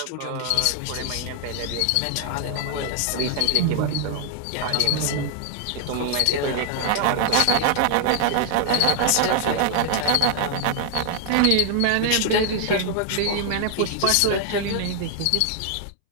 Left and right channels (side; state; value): both; different; correlation 0.00